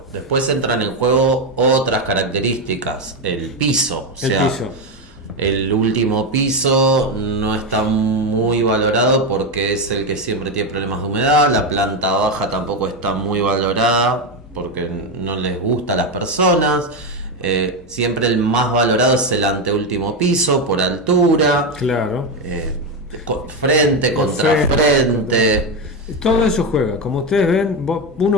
Después entran en juego otras características, el piso. El último piso no está muy valorado porque es el que siempre tiene problemas de humedad. La planta baja tampoco está muy valorada porque no les gusta a las personas. Siempre el más valorado es el anteúltimo piso por altura. Claro. Frente contra frente. Todo eso juega. Como ustedes ven,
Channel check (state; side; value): normal; both; correlation 0.11